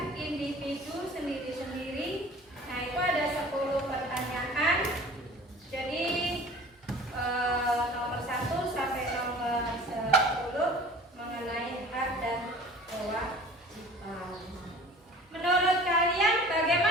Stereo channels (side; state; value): both; normal; correlation 0.45